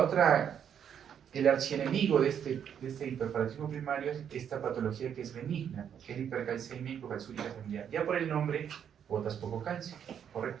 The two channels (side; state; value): left; quieter; 8.5 dB